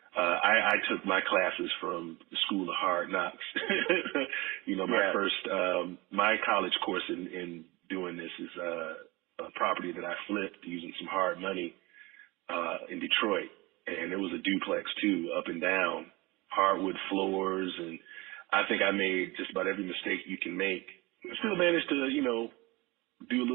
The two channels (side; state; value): left; quieter; 23.0 dB